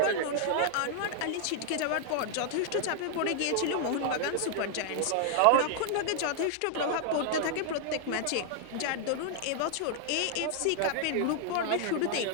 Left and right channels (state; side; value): different; both; correlation -0.01